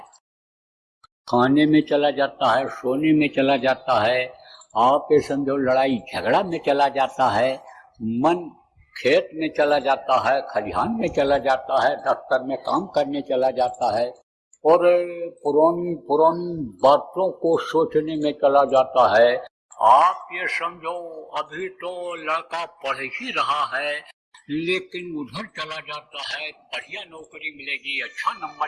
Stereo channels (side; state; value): both; identical; correlation 1.00